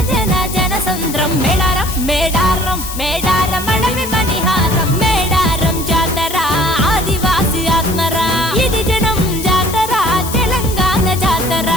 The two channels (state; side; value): noise; left; hiss, 9 dB below the sound